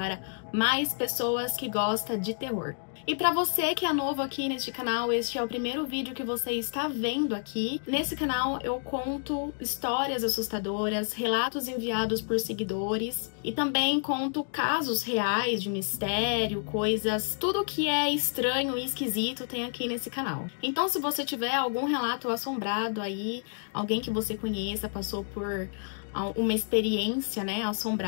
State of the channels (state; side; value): silent; right; digital silence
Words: mais pessoas que gostam de terror. E para você que é novo aqui neste canal, este é o primeiro vídeo que você está vendo aqui. Nesse canal eu conto histórias assustadoras, relatos enviados por seguidores e também conto casos reais de mistério, coisas, tudo que é estranho e esquisito tem aqui nesse canal. Então se você tiver algum relato assombrado aí, alguém que você conheça passou por uma experiência, né,